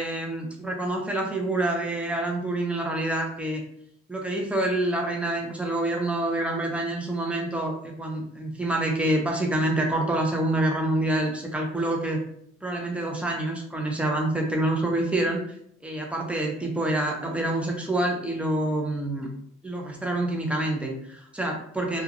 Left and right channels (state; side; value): normal; both; correlation 0.60